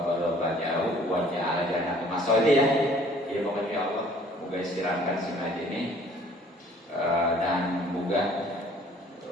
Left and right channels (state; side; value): normal; both; correlation 0.56